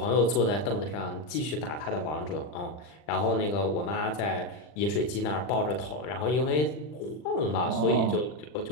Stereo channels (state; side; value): late; right; 40 ms